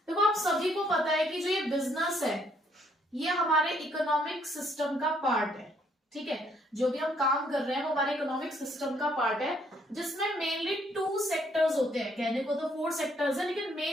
देखो, आप सभी को पता है कि जो ये बिजनेस है, ये हमारे इकोनॉमिक सिस्टम का पार्ट है। ठीक है, जो भी हम काम कर रहे हैं वो हमारे इकोनॉमिक सिस्टम का पार्ट है, जिसमें मेनली 2 सेक्टर्स होते हैं। कहने को तो 4 सेक्टर्स है, लेकिन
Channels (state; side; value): normal; both; correlation 0.68